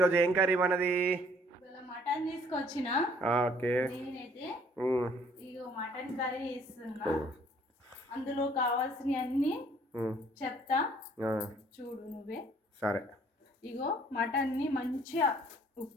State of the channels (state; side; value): normal; both; correlation 0.60